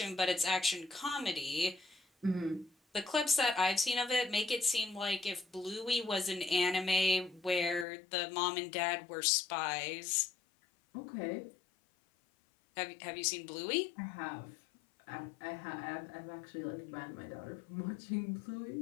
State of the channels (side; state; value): right; drops out; at 7.9 s